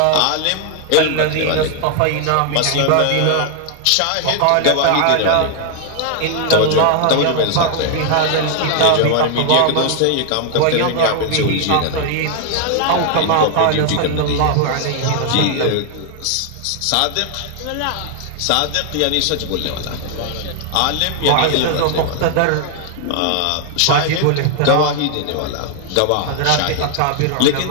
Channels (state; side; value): different; both; correlation 0.00